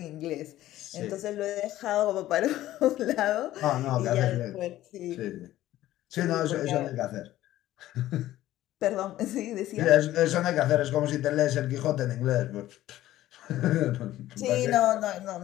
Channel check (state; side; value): quieter; right; 14.5 dB